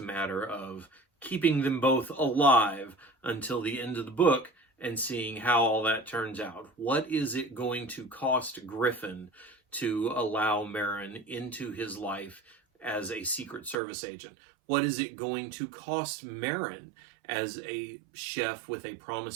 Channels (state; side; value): drops out; left; at 13.8 s